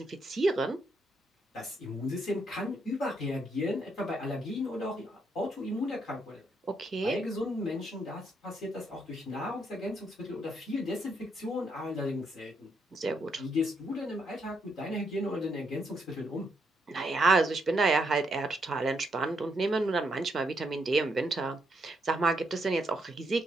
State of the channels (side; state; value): both; normal; correlation 0.76